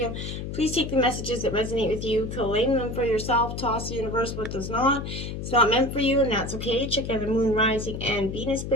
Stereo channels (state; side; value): noise; left; hum, 6 dB below the sound